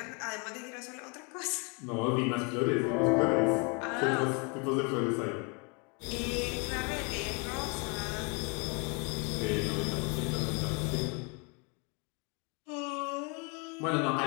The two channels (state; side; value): quieter; right; 33.4 dB